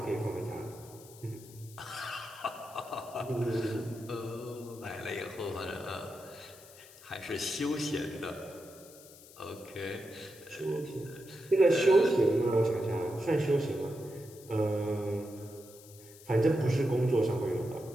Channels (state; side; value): noise; left; hiss, 20 dB below the sound